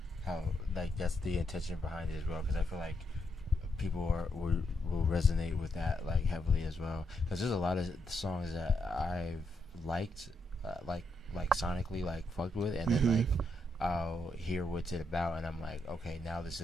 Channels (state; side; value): normal; both; correlation 0.79